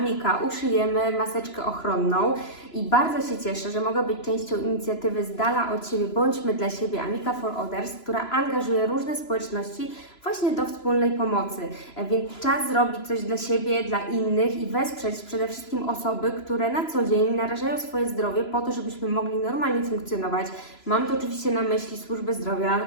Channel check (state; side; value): late; right; 3.0 ms